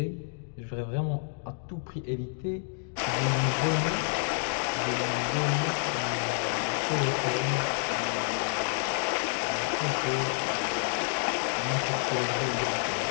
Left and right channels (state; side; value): silent; right; digital silence